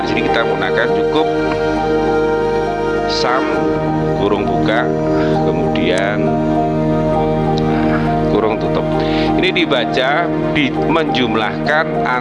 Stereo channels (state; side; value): identical; both; correlation 1.00